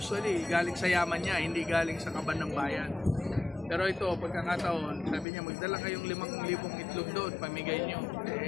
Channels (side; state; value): right; drops out; at 5.2 s